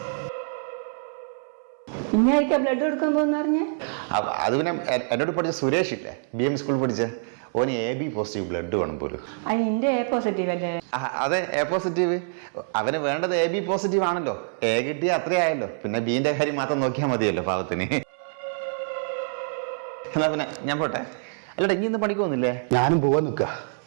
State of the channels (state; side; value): silent; left; 61 dB below the other